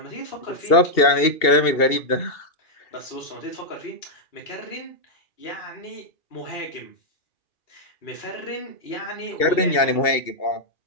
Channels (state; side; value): late; right; 2.7 ms